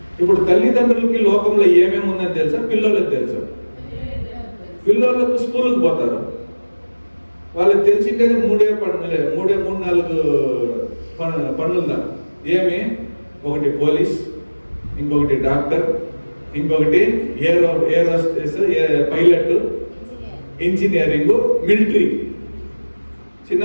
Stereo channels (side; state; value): both; inverted; correlation -1.00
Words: ఇప్పుడు తల్లిదండ్రులకి లోకంలో ఏమేమి ఉందని తెలుసా? పిల్లలకు తెలుసా? పిల్లలకు స్కూల్కి పోతారు, వాళ్ళకి తెలిసిండేది మూడు నాలుగు పనులుందా? ఏమి? ఒకటి పోలీస్, ఇంకొకటి డాక్టర్, ఇంకొకటి ఏరోస్పేస్ పైలట్, ఇంజనీరింగ్, మిలిటరీ.